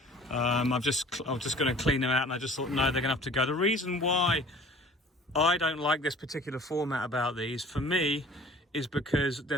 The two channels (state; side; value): normal; both; correlation 0.48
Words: I'm just going to clean them out, and I just thought, no, they're going to have to go. The reason why I don't like this particular format about these, for me, is because